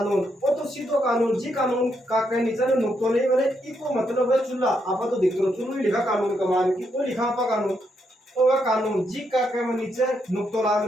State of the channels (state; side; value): normal; both; correlation 0.78